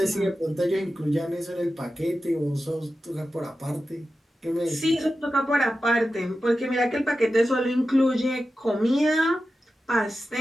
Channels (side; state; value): both; normal; correlation 0.92